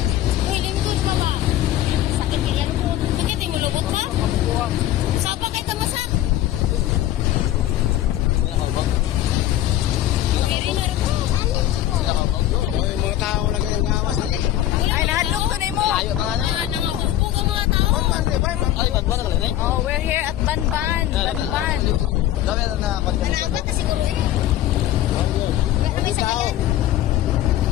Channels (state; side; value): quieter; right; 13.1 dB